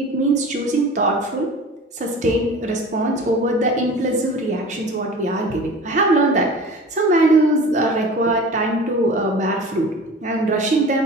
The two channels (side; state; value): both; normal; correlation 0.38